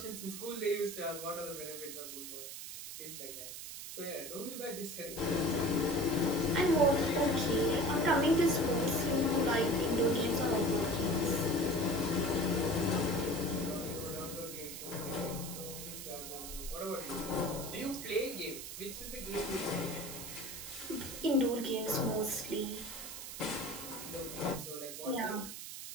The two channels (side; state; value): right; noise; hiss, 9 dB below the sound